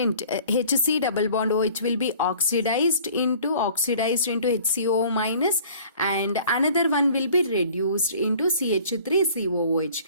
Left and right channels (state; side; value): inverted; both; correlation -0.50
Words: HC double bond OH will be oxidized into HCO minus, and another one will be reduced into CH3COOH.